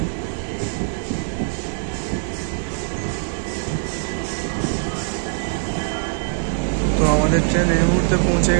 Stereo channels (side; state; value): left; silent; digital silence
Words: তো আমাদের ট্রেন এই মুহূর্তে পৌঁছে